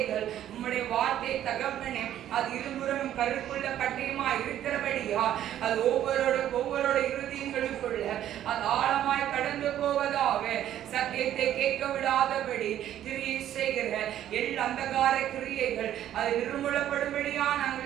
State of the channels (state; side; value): quieter; left; 11.6 dB